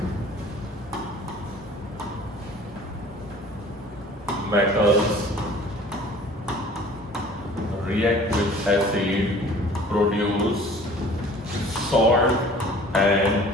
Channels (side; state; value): both; normal; correlation 0.48